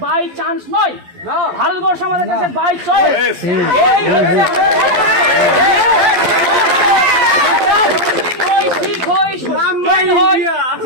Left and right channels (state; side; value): late; left; 11 ms